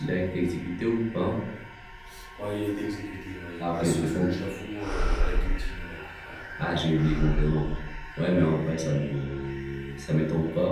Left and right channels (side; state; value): both; identical; correlation 1.00